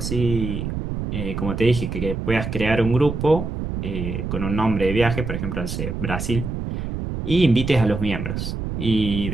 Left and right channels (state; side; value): noise; right; rumble, 4 dB below the sound